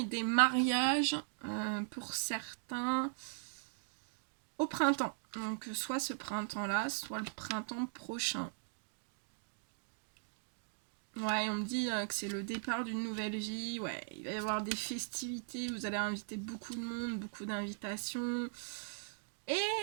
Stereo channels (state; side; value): silent; left; digital silence